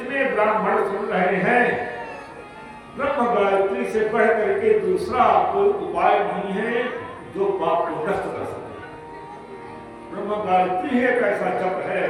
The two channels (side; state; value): both; identical; correlation 1.00